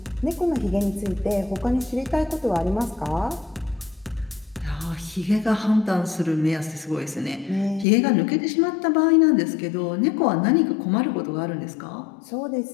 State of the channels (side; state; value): right; drops out; at 7.9 s